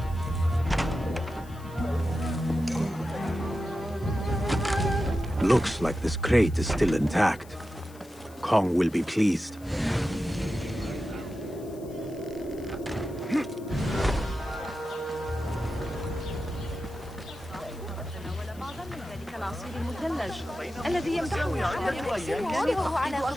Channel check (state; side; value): noise; left; hiss, 24 dB below the sound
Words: Looks like this crate is still intact. Kong will be pleased. الذي يمدحه وهو على